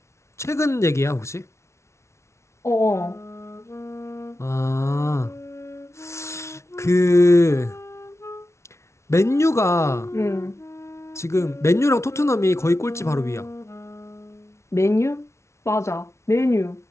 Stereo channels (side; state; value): right; late; 0.13 ms